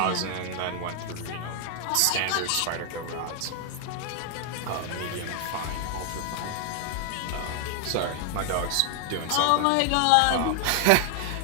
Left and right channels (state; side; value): different; both; correlation 0.00